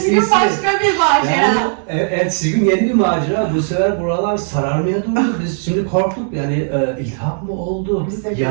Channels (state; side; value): silent; left; 69 dB below the other